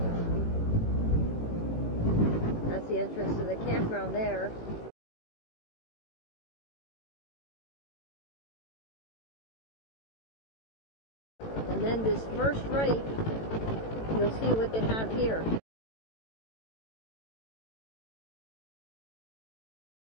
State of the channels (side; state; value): right; late; 18 ms